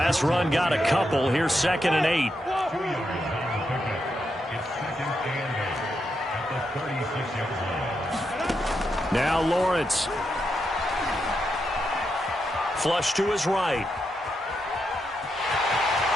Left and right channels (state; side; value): normal; both; correlation 0.83